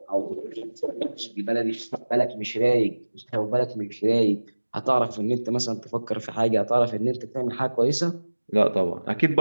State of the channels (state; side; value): inverted; both; correlation -1.00